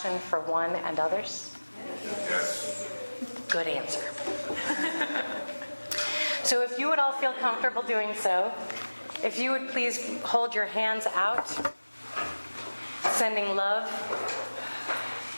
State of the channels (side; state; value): both; inverted; correlation -1.00